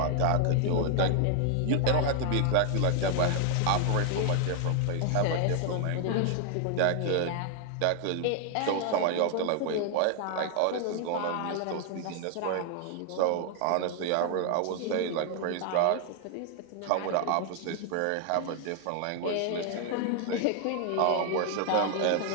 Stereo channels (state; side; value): different; both; correlation 0.00